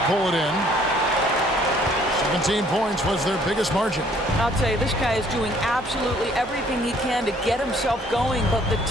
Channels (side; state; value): both; normal; correlation 0.61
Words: pull it in. 17 points was their biggest margin. I'll tell you, this guy is doing absolutely everything he can to get himself going, but the